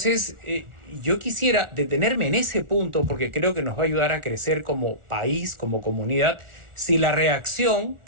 yo quisiera detenerme en ese punto porque creo que nos va a ayudar a crecer como país, como comunidad, si la reacción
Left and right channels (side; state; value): left; late; 1.4 ms